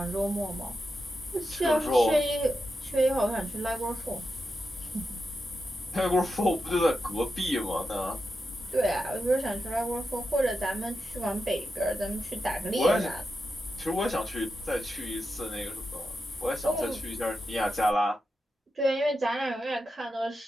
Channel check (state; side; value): normal; both; correlation 0.88